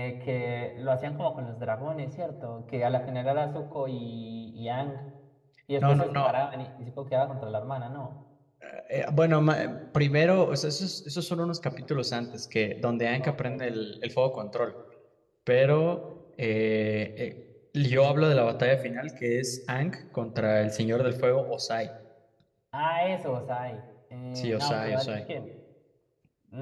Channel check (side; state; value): both; identical; correlation 1.00